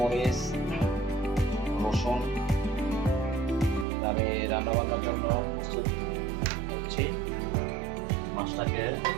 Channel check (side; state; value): left; drops out; at 3.9 s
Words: রসুন আমি রান্নাবান্নার জন্য প্রস্তুত হচ্ছি। মাছটাকে